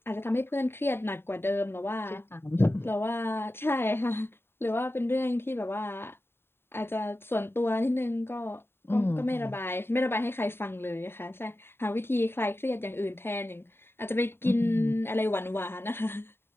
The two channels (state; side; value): late; right; 0.11 ms